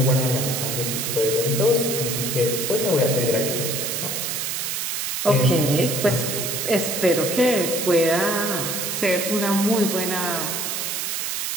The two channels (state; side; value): noise; right; hiss, 2 dB below the sound